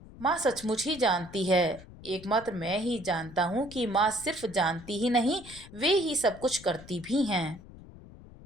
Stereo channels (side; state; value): left; noise; rumble, 18 dB below the sound